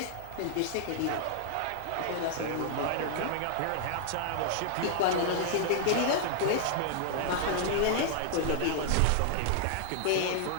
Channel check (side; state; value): both; different; correlation -0.01